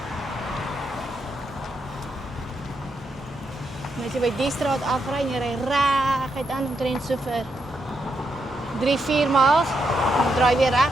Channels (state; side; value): normal; both; correlation 0.81